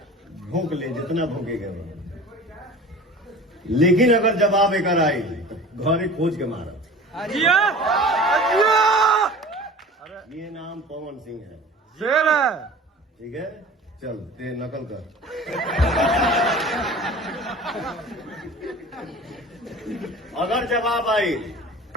भौंक ले जितना भौंकेगा वो, लेकिन अगर जवाब एक आई तो घरे खोज के मारा। ये नाम पवन सिंह है। शेर है। ठीक है चल ते नकल कर। अगर जवाब आई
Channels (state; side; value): normal; both; correlation 0.40